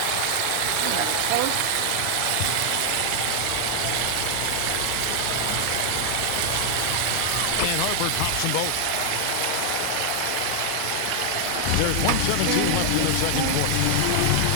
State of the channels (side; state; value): both; different; correlation 0.00